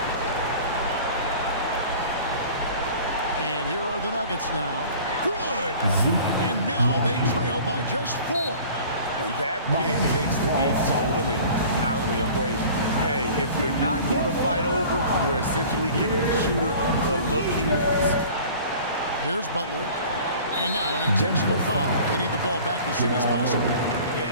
And here are the Nuggets now. Good! And now they trail by just 4. And that pick takes the beat totally out of the equation. Hey, if you're not going to fight over, you're essentially giving the shooter the look he wants. Here's Butler. And now an intentional foul. They need the ball back as soon as possible.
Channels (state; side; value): inverted; both; correlation -0.44